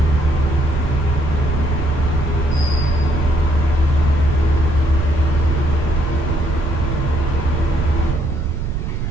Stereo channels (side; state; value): right; noise; rumble, 2 dB below the sound